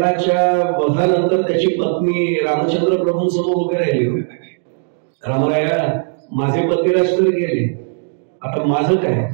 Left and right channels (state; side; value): silent; left; digital silence